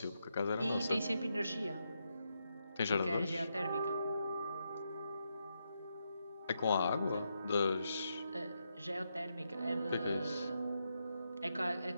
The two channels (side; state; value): both; inverted; correlation -0.83